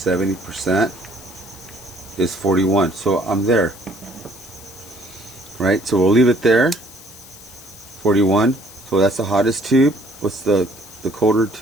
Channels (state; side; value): noise; left; hiss, 19 dB below the sound